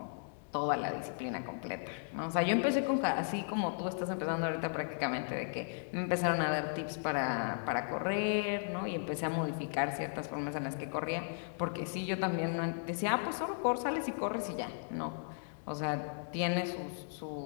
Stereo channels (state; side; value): silent; right; digital silence